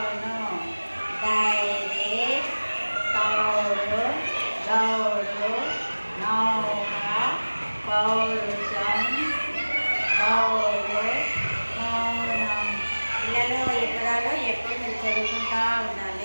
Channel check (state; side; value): inverted; both; correlation -1.00